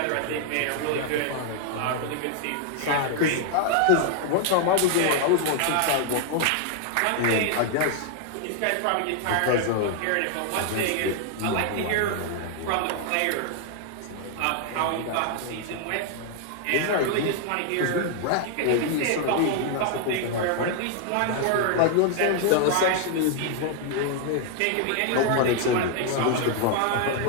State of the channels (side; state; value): both; different; correlation 0.00